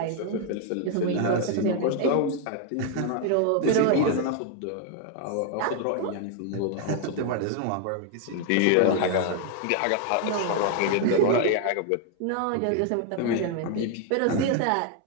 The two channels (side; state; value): both; different; correlation 0.00